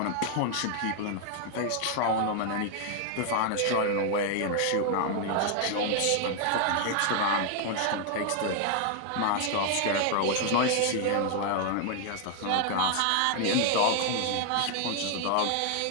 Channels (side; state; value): both; different; correlation 0.00